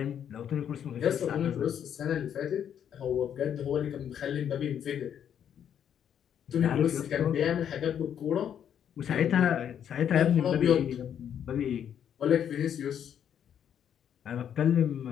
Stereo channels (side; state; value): right; quieter; 9.1 dB